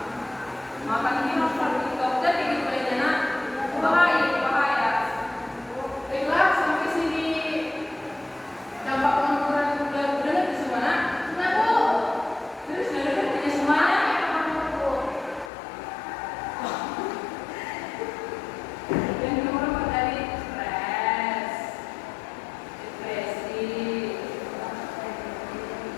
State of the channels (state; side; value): drops out; right; at 15.5 s